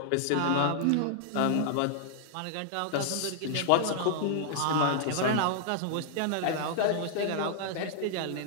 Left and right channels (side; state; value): both; different; correlation -0.01